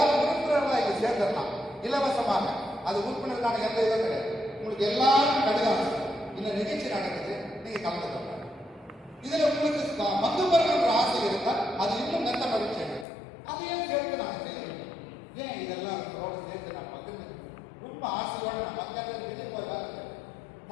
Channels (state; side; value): drops out; right; at 13.1 s